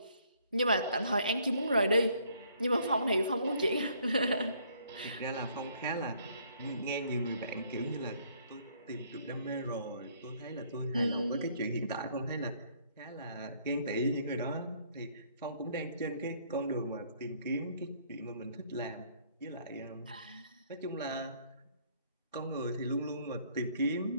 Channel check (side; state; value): both; inverted; correlation -0.64